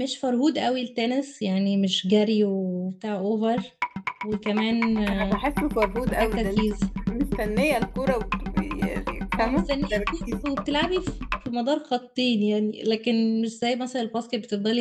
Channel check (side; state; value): both; identical; correlation 1.00